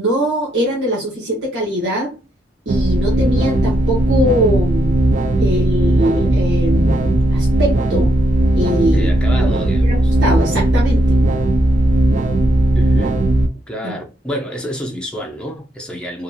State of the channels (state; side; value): normal; both; correlation 0.79